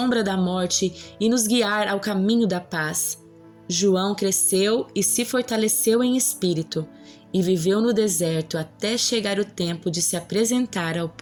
da morte e nos guiar ao caminho da paz. João cresceu e se fortaleceu em espírito e viveu no deserto até chegar o tempo de se apresentar ao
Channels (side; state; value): both; identical; correlation 1.00